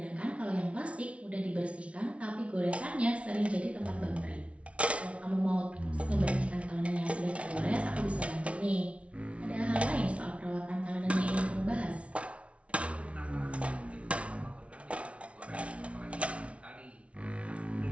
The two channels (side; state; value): left; late; 0.062 ms